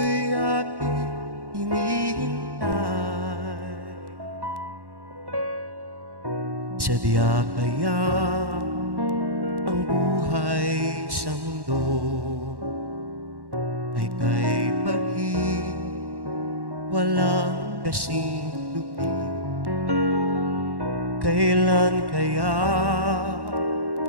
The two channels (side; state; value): left; late; 1.1 ms